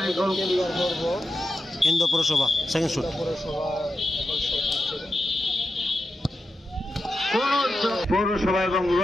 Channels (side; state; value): both; normal; correlation 0.89